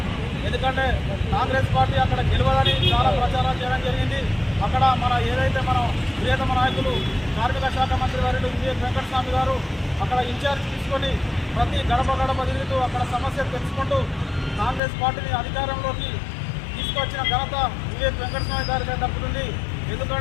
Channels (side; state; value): right; drops out; at 14.8 s